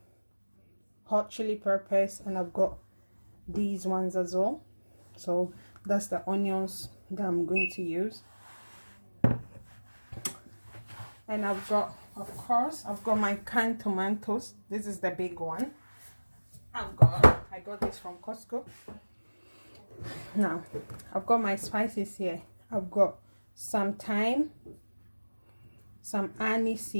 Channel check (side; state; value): both; inverted; correlation -1.00